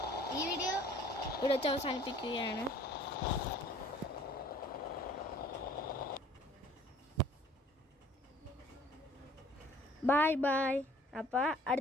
ഈ വീഡിയോ ഇവിടെ വെച്ച് അവസാനിപ്പിക്കുകയാണ്. ബൈ. അപ്പോൾ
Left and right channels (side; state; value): both; normal; correlation 0.54